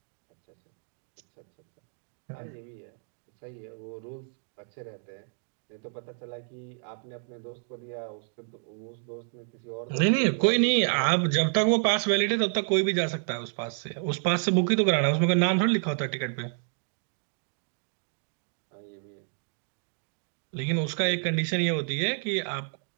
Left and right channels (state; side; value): silent; left; 58 dB below the other